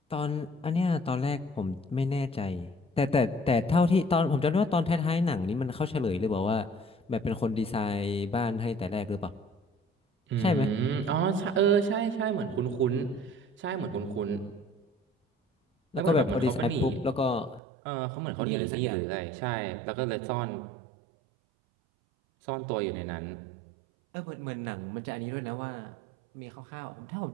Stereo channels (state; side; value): drops out; left; at 17.6 s